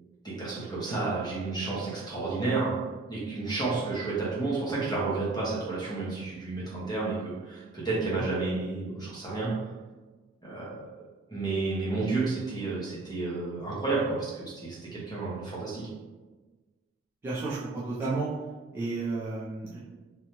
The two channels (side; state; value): left; quieter; 3.1 dB